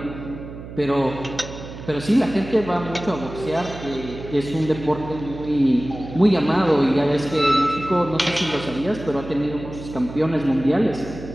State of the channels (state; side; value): noise; right; hum, 12 dB below the sound